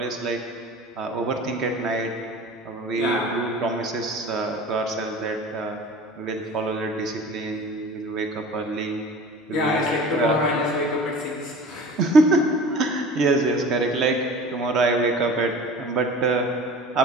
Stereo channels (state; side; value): normal; both; correlation 0.40